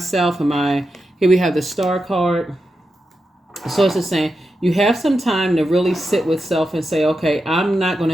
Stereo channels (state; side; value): normal; both; correlation 0.88